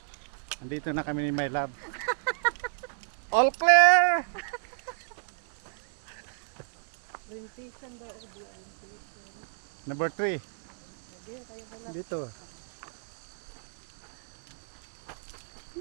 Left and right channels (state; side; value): silent; left; digital silence